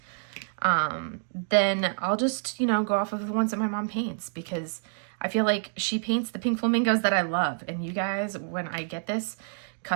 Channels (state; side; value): silent; left; digital silence